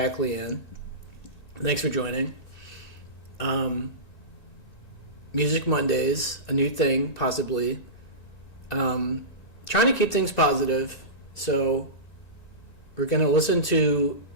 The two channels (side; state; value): right; late; 1.9 ms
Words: Leanne. Thanks for joining. Music Mondays, a new thing, possibly. Trying to keep things positive, so we're going to listen to